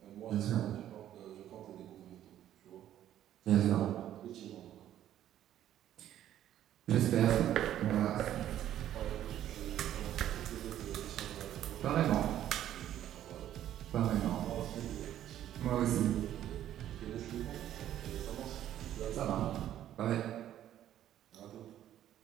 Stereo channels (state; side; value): quieter; left; 11.7 dB